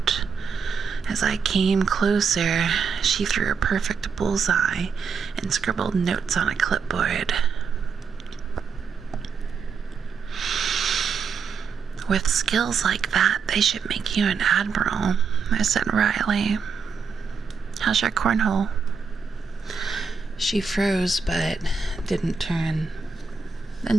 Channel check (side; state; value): left; quieter; 5.6 dB